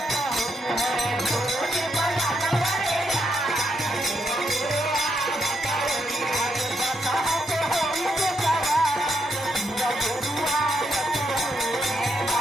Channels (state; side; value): normal; both; correlation 0.80